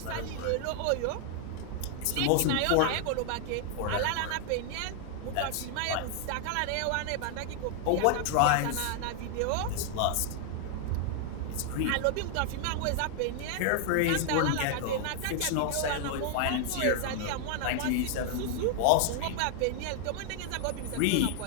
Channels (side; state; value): both; different; correlation 0.00